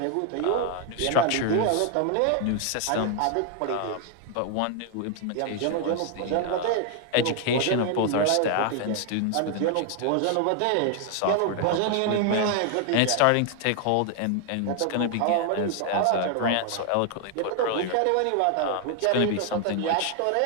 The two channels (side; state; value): both; different; correlation 0.00